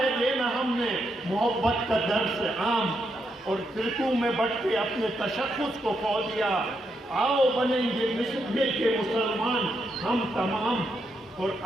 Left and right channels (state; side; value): normal; both; correlation 0.80